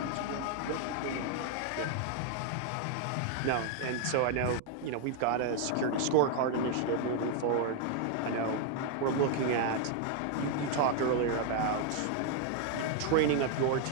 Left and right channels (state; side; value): different; both; correlation 0.00